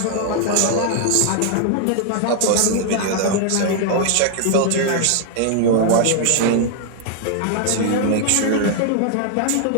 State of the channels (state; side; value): different; both; correlation 0.00